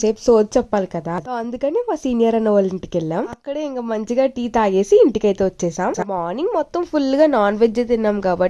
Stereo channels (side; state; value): both; identical; correlation 1.00